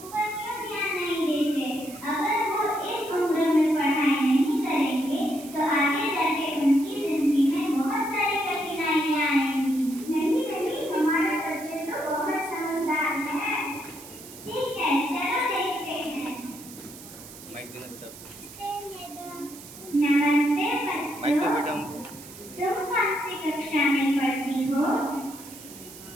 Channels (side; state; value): right; noise; hiss, 16 dB below the sound